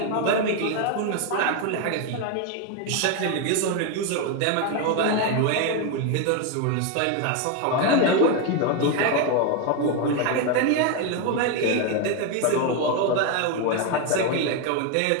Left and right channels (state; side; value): different; both; correlation 0.02